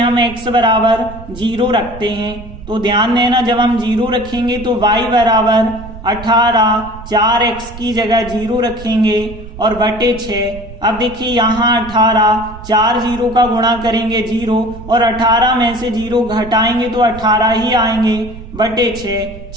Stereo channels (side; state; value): right; noise; rumble, 14 dB below the sound